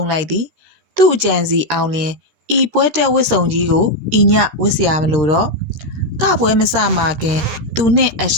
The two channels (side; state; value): left; late; 13 ms